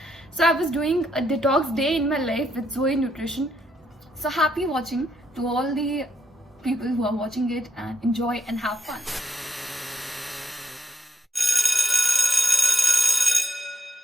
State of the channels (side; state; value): both; normal; correlation 0.79